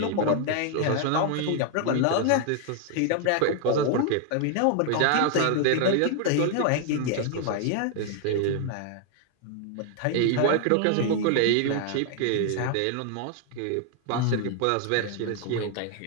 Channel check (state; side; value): different; both; correlation 0.00